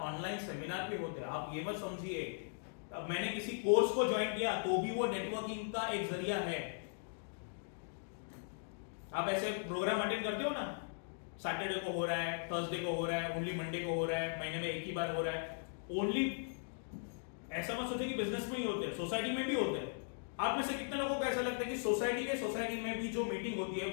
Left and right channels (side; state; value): right; silent; digital silence